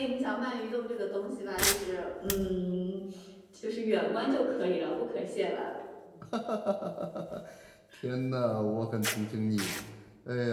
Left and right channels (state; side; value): identical; both; correlation 1.00